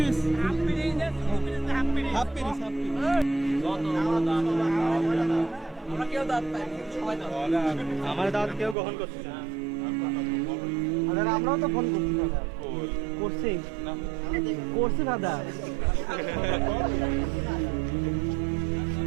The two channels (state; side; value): drops out; left; at 8.8 s